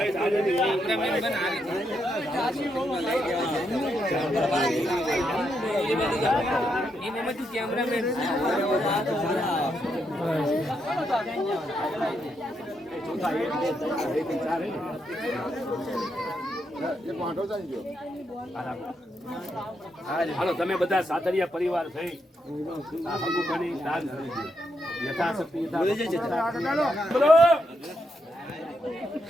હાલો તમે બધા સાથરિયા પરિવાર થઈ દાન યથાશક્તિ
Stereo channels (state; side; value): normal; both; correlation 0.81